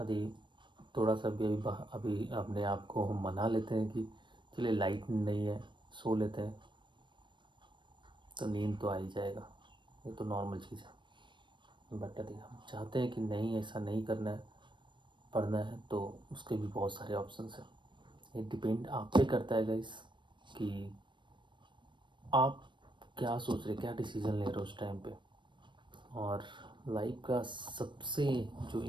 थोड़ा सा भी अभी अपने आप को हम मना लेते हैं कि चलिए लाइट नहीं है, सो लेते हैं, तो नींद तो आ ही जाएगा, ये तो नॉर्मल चीज़ है। बट यदि हम चाहते हैं कि नहीं ऐसा नहीं करना है, पढ़ना है, तो उसके भी बहुत सारे ऑप्शंस हैं। ये डिपेंड आप पे करता है गाइस कि आप क्या सोच रहे, क्या डिसीज़न ले रहे हो उस टाइम पे। और लाइफ का सबसे जो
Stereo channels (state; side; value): late; left; 0.23 ms